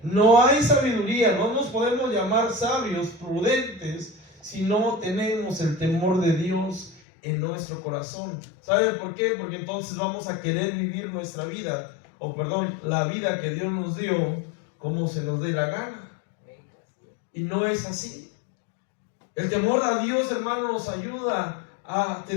No hay sabiduría, no nos podemos llamar sabios, prudentes, si no tenemos el temor de Dios en nuestro corazón. ¿Sabe por qué? Porque entonces vamos a querer vivir nuestra vida, la vida que Dios nos dio, como se nos dé la gana. Y no es así. El temor a Dios, hermano, nos ayuda a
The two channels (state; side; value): drops out; right; at 7.0 s